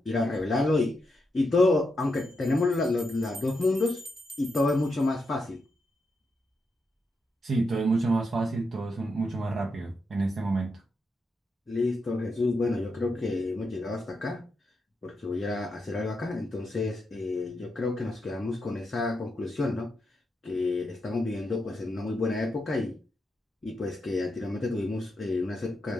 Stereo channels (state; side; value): normal; both; correlation 0.84